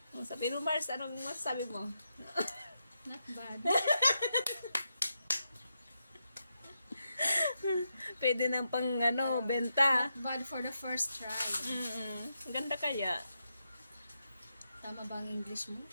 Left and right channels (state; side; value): inverted; both; correlation -0.85